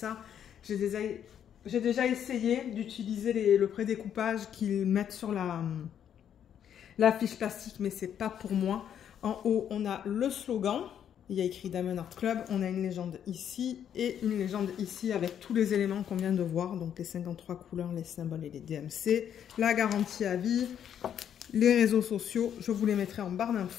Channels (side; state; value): right; quieter; 9.2 dB